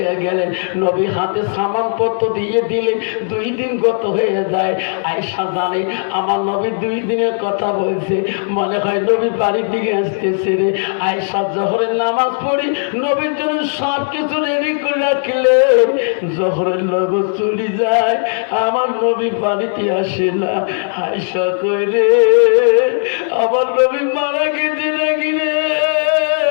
গেলেন, নবী হাতে সামানপত্র দিয়ে দিলেন। 2 দিন গত হয়ে যায়। আয়েশা জানে আমার নবী 2 দিনের কথা বলছে, মনে হয় নবী বাড়ির দিকে আসতেছে রে। আয়েশা জোহরের নামাজ পড়ি নবীর জন্য সব কিছু রেডি করে রাখলেন। জোহরের নগর চলে যায়, আমার নবী বাড়িতে আসে না। আয়েশা কই রে, আমার নবী মারা গেছে নাকি রে?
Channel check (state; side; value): silent; right; digital silence